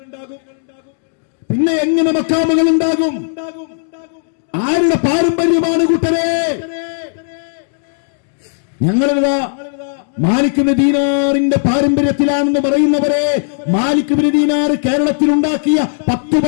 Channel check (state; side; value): silent; right; digital silence